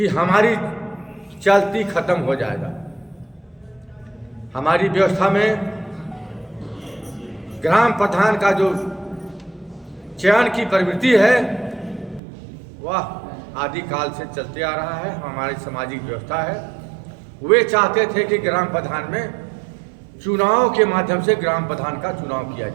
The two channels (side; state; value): left; drops out; at 12.2 s